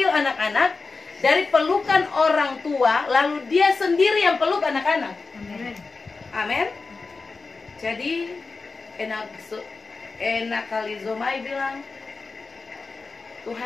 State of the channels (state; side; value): quieter; right; 4.2 dB